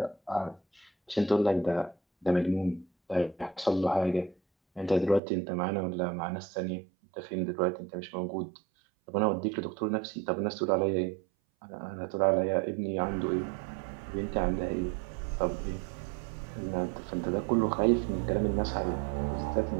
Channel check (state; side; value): drops out; left; at 5.2 s